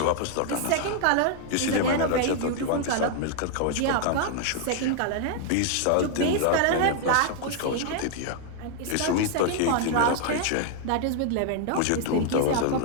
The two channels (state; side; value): different; both; correlation 0.00